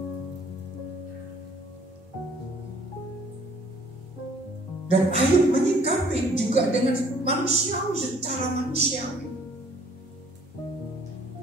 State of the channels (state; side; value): normal; both; correlation 0.58